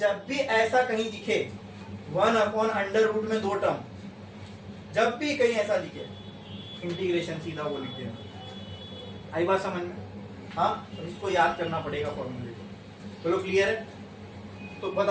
भी ऐसा कहीं दिखे 1 अपॉन अंडर रूट में 2 टर्म, जब भी कहीं ऐसा दिखे, इंटीग्रेशन सीधा वो लिख देना। आई बात समझ में? हाँ, तो इसको याद करना पड़ेगा फॉर्मूले को, चलो क्लियर है। तो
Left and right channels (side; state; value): both; identical; correlation 1.00